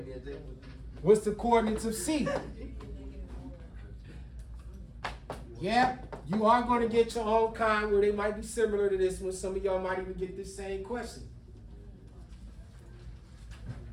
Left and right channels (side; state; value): both; identical; correlation 1.00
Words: What's the coordinates of C? Yeah, you are going to get your own kind where they might be similar to this one. Some of y'all might even get this same question.